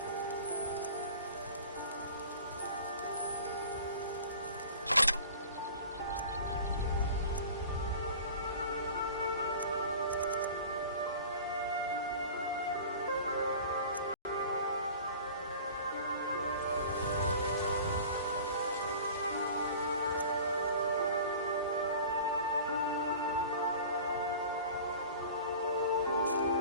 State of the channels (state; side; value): inverted; both; correlation -0.41